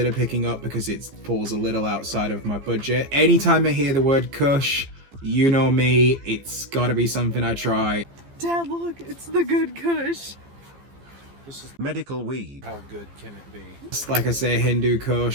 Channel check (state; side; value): late; left; 15 ms